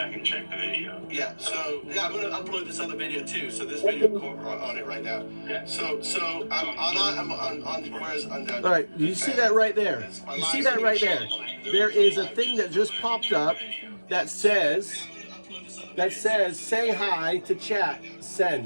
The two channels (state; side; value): inverted; both; correlation -1.00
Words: and check the video. Yeah. So I'm going to upload this other video too. So this video on it right now. Yeah. So I'm on where's undown. All right. You see that right there? You see that right there? There is a thing that just popped up that says say hi to chat.